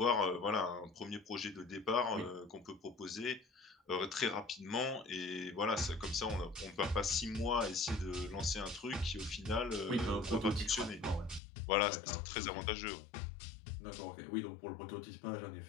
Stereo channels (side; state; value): right; drops out; at 11.4 s